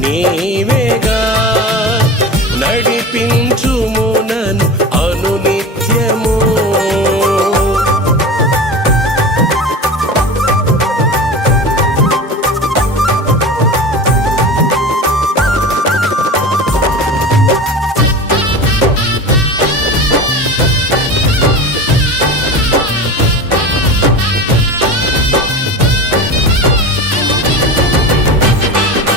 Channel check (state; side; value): normal; both; correlation 0.31